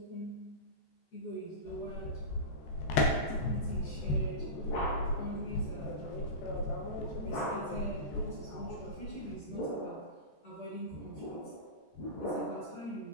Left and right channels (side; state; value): right; late; 14 ms